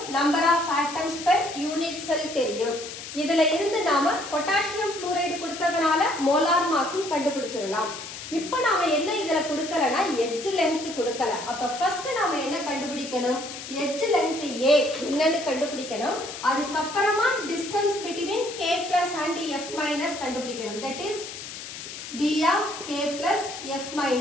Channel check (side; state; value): left; noise; hiss, 10 dB below the sound